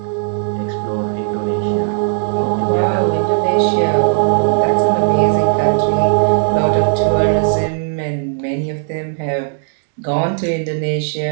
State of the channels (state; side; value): silent; left; digital silence